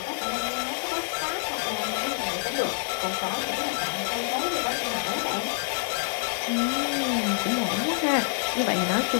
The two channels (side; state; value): right; silent; 60 dB below the other